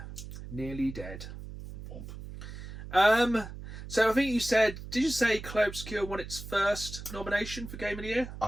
nearly dead. So I think you said, did you say Clair Obscur won its first nomination for Game of the Year?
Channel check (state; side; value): noise; right; hum, 11 dB below the sound